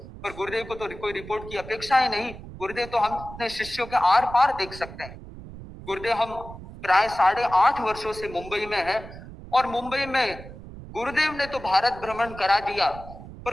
पर गुरुदेव को तो कोई रिपोर्ट की अपेक्षा ही नहीं। गुरुदेव तो हम अपने शिष्यों के आर पार देख सकते हैं। गुरुदेव हम प्राय 8.5 वर्षों से मुंबई में है, और मुंबई में गुरुदेव ने तो भारत भ्रमण करा दिया,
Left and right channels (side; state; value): right; noise; rumble, 14 dB below the sound